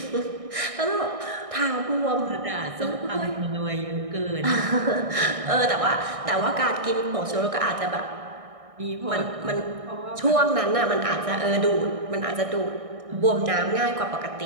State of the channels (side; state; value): left; late; 1.6 ms